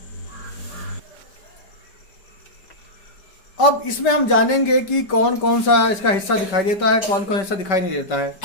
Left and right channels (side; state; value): right; late; 5.2 ms